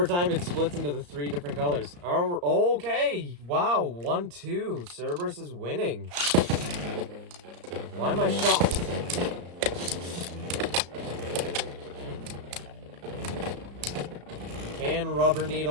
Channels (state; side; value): late; left; 34 ms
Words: time, it splits into the 3 different colors. Oh, okay. Wow, 1-2. Cerberus is winning. Why am I shocked? Can Rubber